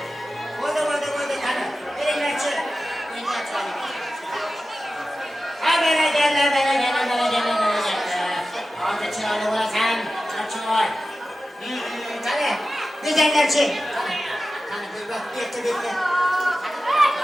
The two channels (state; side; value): normal; both; correlation 0.94